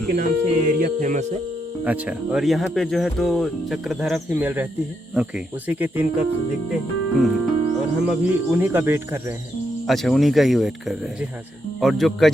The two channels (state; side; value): normal; both; correlation 0.80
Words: के नाम से ये एरिया फेमस है। अच्छा। और यहाँ पे जो है तो चक्रधारा फीमेल रहती है। ओके। उसी के 3 कप दिखते हैं। और हम अभी उन्हीं का वेट कर रहे हैं। अच्छा, उन्हीं का ही वेट कर रहे हैं। जी हाँ सर। और जो